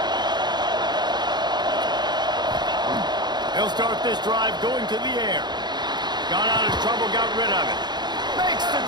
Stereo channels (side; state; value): left; late; 0.21 ms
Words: They'll start this drive going to the air. Got out of trouble, got rid of it. Makes the